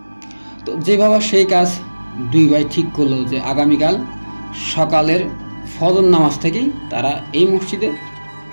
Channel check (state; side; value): inverted; both; correlation -1.00